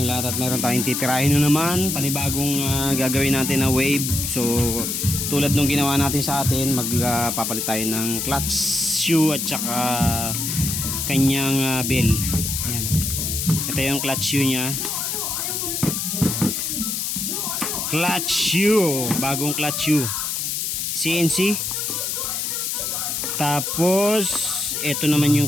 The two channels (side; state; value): left; noise; hiss, 1 dB below the sound